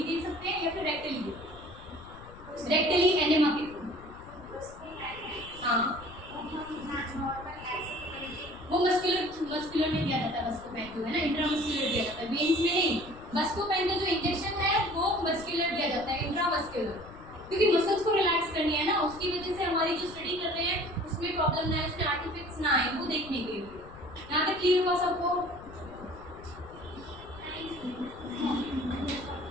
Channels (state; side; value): noise; left; rumble, 18 dB below the sound